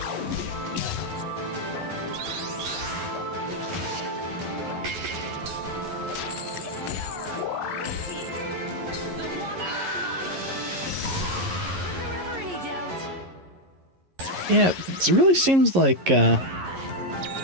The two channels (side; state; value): left; late; 11 ms